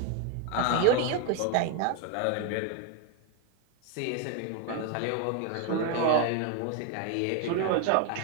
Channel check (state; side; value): different; both; correlation 0.01